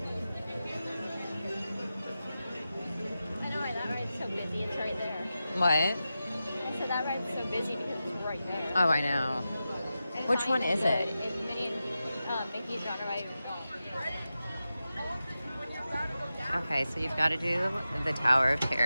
I know why that ride's so busy. It's right there. What? I said that ride's so busy because it's right there. Oh, I know. And it's Which not one even is good. it? It's Minnie and Mickey's Genre Ride. Okay, so you've got to do the Tower of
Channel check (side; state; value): both; inverted; correlation -0.92